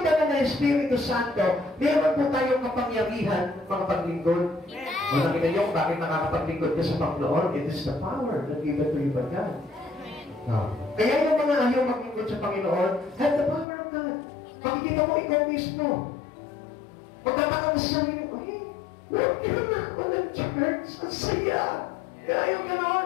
banal na Espiritu Santo, meron po tayong kapangyarihan mga paglingkod. O nakita niyo kung bakit nakakapaglingkod ka sa Panginoon? It is the power that given to you by God. Kaya yung mga ayaw maglingkod sa Panginoon, have the power of God. Makikita mo ikaw mismo. Magtataka mo sa sarili mo, huwag ka na ako ng church. Ang saya. Kaya yung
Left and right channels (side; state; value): right; drops out; at 13.7 s